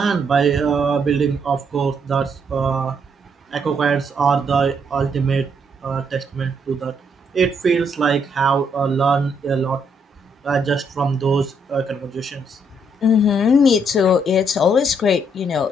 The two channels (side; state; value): both; normal; correlation 0.72